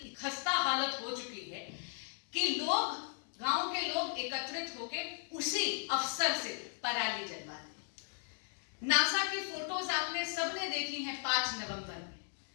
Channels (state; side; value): silent; right; 53 dB below the other